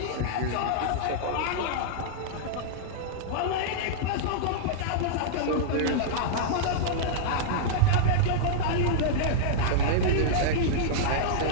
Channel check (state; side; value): different; both; correlation -0.02